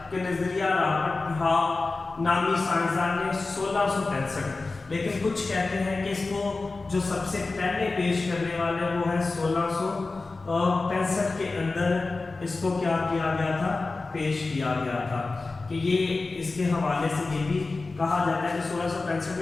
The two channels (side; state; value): right; quieter; 3.6 dB